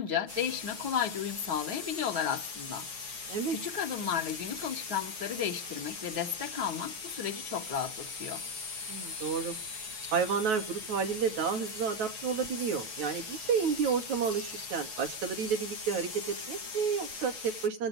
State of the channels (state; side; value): late; left; 9.3 ms